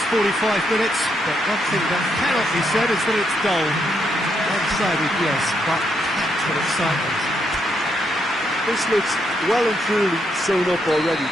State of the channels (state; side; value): normal; both; correlation 0.77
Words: 45 minutes, but one thing that cannot be said is that it's dull. One-sided, yes, but packed with excitement. This looks well and truly sewn up already,